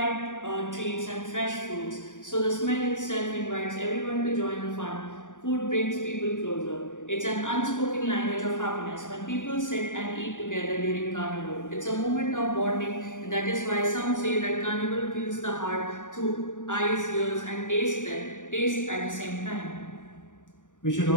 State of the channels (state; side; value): late; right; 0.87 ms